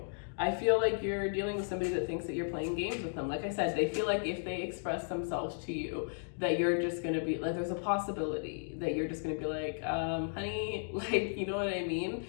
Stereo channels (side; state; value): right; silent; digital silence